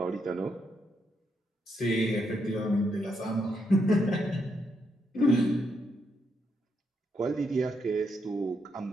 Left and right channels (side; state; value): both; normal; correlation 0.79